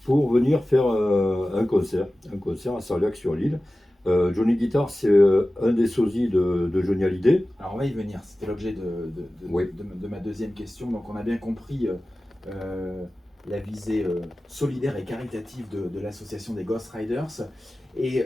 pour venir faire un concert à Sarliac-sur-l'Île. Johnny Guitar, c'est un des sosies de Johnny Hallyday. Alors on va y venir, c'était l'objet Oui. de ma deuxième question. Donc on a bien compris la visée solidaire et caritative de l'association des Ghost Riders. Et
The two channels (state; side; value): normal; both; correlation 0.96